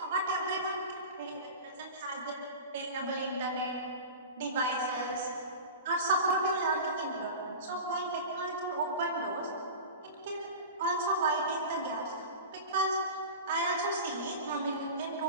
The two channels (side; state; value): both; inverted; correlation -0.32